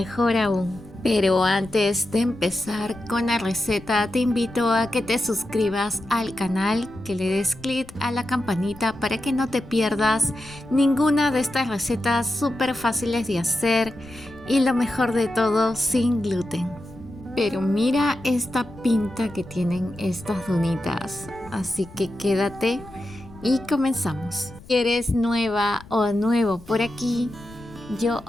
aún. Pero antes de empezar con la receta, te invito a que te suscribas al canal, que le des clic a la campanita para que no te pierdas ninguna de estas recetas súper fáciles de hacer y lo mejor de todo, sin gluten. Pero mira esta pinta que tienen estas donitas, así que quédate y comenzamos. Si eres nueva o nuevo por aquí, yo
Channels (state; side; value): noise; left; rumble, 20 dB below the sound